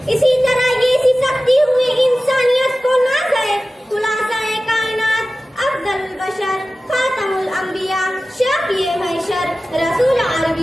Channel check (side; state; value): both; normal; correlation 0.96